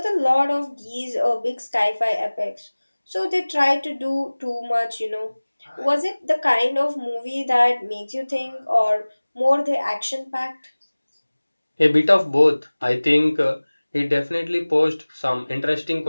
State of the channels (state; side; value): inverted; both; correlation -1.00